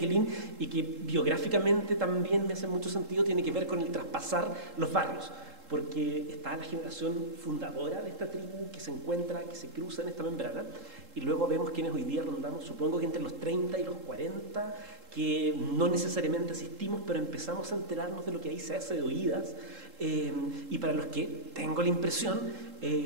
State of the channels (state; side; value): late; left; 3.7 ms